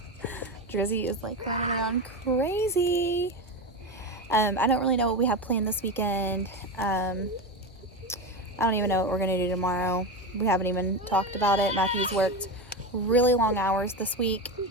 Drizzy is like running around crazy. I don't really know what we have planned this weekend. I don't even know what we're going to do tomorrow. We haven't even talked about it. Matthew's worked really long hours this week,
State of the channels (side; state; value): both; normal; correlation 0.19